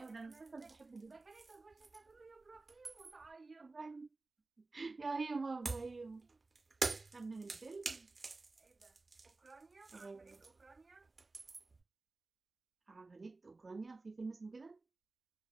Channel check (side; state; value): left; quieter; 3.5 dB